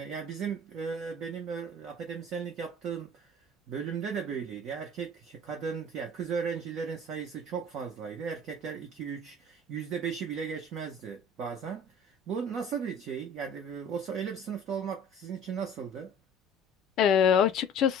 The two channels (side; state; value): both; normal; correlation 0.45